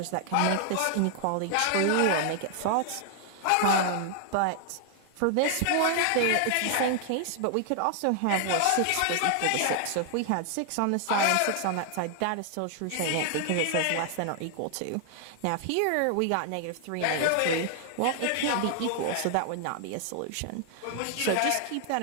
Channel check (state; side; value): different; both; correlation 0.00